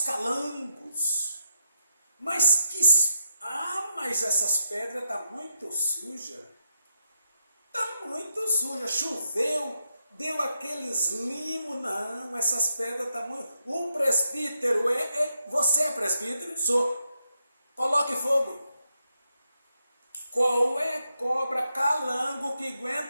calangos. Mas essas pedras estão muito sujas. Está muito suja. Choveu, deu aqueles limos. Não, essas pedras estão muito... O presbítero você é presbítero? Sou. Coloque fogo. Qual é cobra calango que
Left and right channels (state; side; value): inverted; both; correlation -0.83